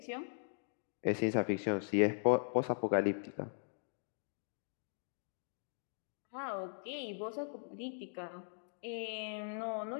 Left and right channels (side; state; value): right; silent; digital silence